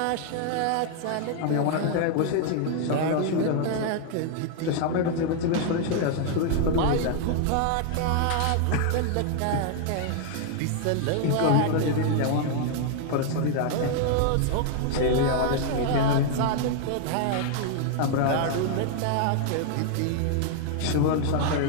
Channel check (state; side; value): different; both; correlation 0.00